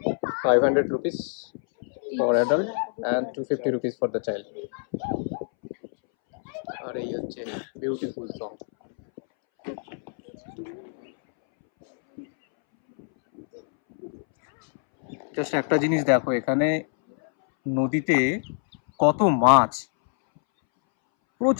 500 rupees for adult and 250 rupees for the child. আর এই হচ্ছে বিউটিফুল জং। জাস্ট একটা জিনিস দেখো, এখানে নদীতে কত মাছ,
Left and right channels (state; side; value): silent; right; 61 dB below the other